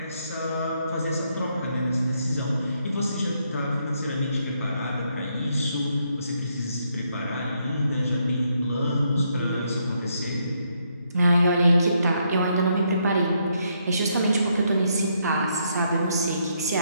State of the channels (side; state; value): both; inverted; correlation -0.76